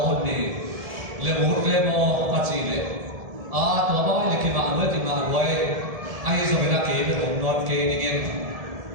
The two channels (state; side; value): late; left; 1.7 ms